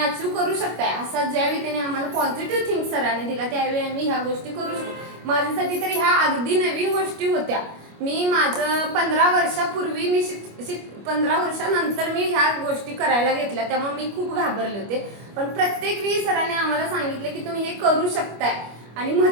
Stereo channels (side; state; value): left; late; 25 ms